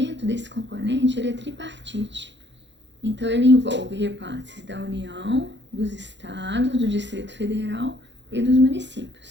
desse componente ele é tripartite, então ele envolve repasses da União, dos estados, do Distrito Federal e dos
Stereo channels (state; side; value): late; left; 0.52 ms